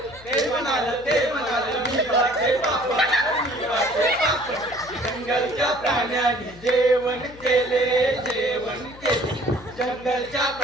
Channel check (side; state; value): left; noise; hum, 20 dB below the sound